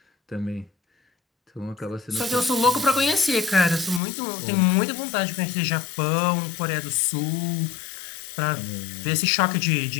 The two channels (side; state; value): right; drops out; at 4.0 s